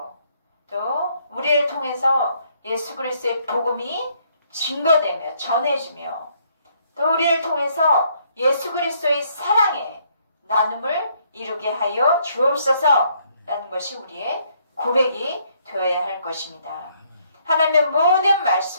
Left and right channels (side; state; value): both; inverted; correlation -0.69